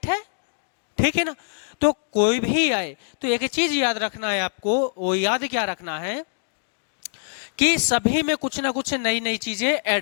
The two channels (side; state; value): right; silent; digital silence